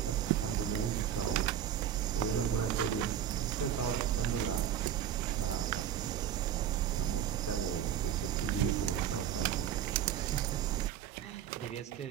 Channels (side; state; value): left; quieter; 9.9 dB